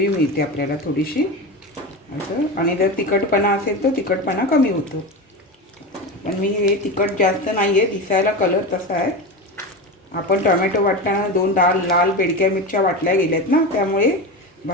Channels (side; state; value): both; normal; correlation 0.22